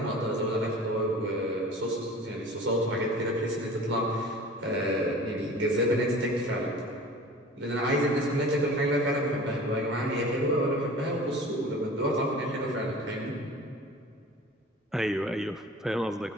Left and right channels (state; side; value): normal; both; correlation 0.41